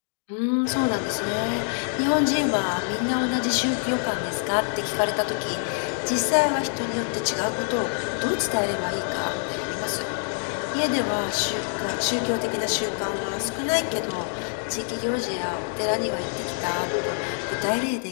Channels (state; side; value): silent; right; digital silence